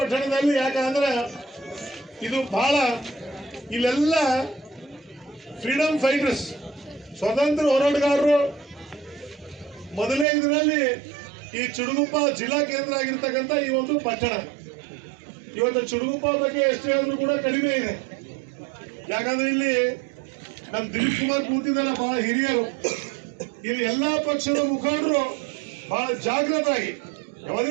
ಯಾಕಂದ್ರೆ ಇದು ಬಹಳ ಇಲ್ಲೆಲ್ಲ ಫ್ರೀಡಮ್ ಫೈಟರ್ಸ್, ಸ್ವತಂತ್ರ ಹೋರಾಟಗಾರರು. ಮೊದಲನೇ ಇದರಲ್ಲಿ ಈ ಚುಟುಗುಪ್ಪ ಜಿಲ್ಲಾ ಕೇಂದ್ರ ಆಗಿರ್ತಕ್ಕಂಥ ಈ ಒಂದು ಪಟ್ಟಣ, ಇವತ್ತು ಚುಟುಗುಪ್ಪ ಬಗ್ಗೆ ಎಷ್ಟು ಹೇಳಿದ್ರು ಕೂಡ ಕಡಿಮೆ ಇದೆ. ಯಾಕಂದ್ರೆ ಇಲ್ಲಿ ನಮ್ಮ ದಿಲೀಪ್ ಕುಮಾರ್ ಕೂತಿದ್ದಲ್ಲ, ಬಹಳ ಹಿರಿಯರು, ಇಲ್ಲಿ ಎಲ್ಲಾ ಪಕ್ಷದ ಮುಖಂಡರು ಬಹಳ ಜಾಗೃತರಾಗಿ,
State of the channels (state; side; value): drops out; left; at 10.2 s